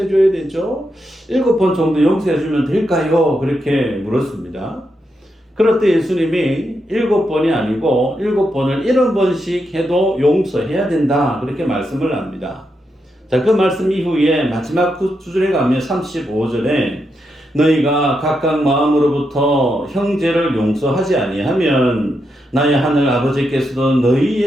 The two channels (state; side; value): normal; both; correlation 0.83